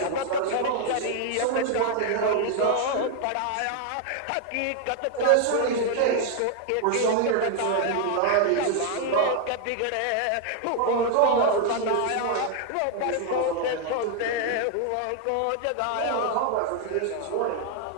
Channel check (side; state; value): both; different; correlation 0.00